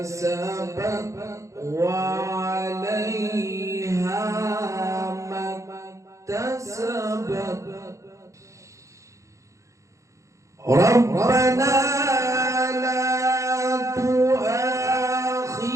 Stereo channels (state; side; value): late; left; 0.15 ms